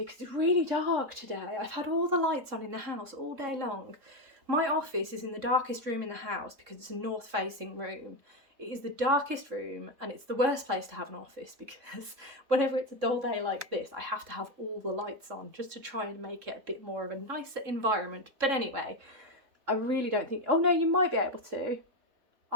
because it's really dark today. I've had all the lights on in the house all day long. My office is in the darkest room in the house because it's a north-facing room. It is the darkest room, and it's the worst place to have an office because whenever it's a dull day like this, I have to have all the lights on just to try and make it a bit more of a nicer environment. But anyway, I really don't think... Oh no, you might be able to.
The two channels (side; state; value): left; late; 3.6 ms